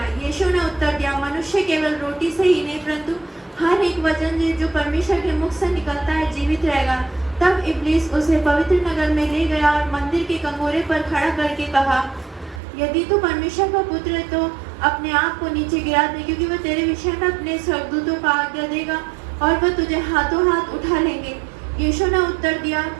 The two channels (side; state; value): left; drops out; at 12.6 s